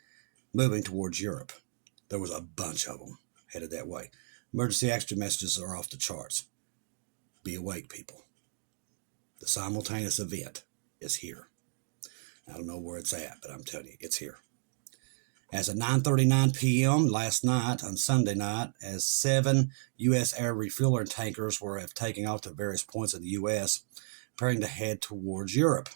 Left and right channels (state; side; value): silent; left; digital silence